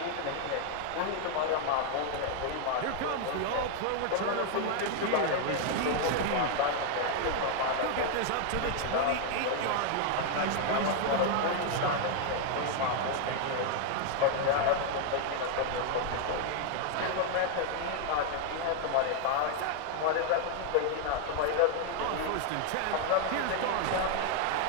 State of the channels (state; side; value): different; both; correlation 0.00